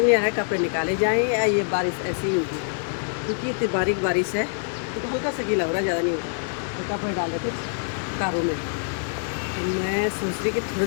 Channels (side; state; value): right; silent; digital silence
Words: आ रहा है कपड़े निकाले जाएं या ये बारिश ऐसी ही होगी। क्योंकि इतनी बारीक बारिश है तो हल्का सा गीला हो रहा है, ज़्यादा नहीं होता। और कपड़े डाल रखे कारों में, तो मैं सोच रही कि थोड़ी